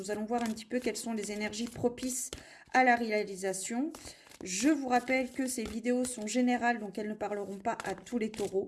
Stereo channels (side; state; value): both; identical; correlation 1.00